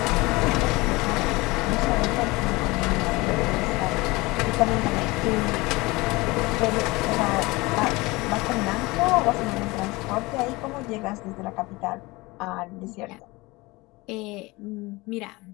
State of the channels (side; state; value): right; quieter; 22.6 dB